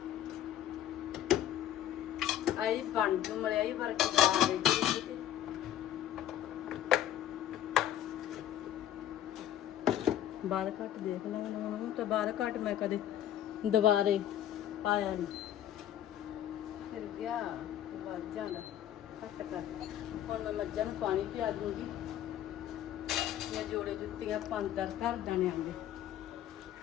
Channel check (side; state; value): right; quieter; 11.4 dB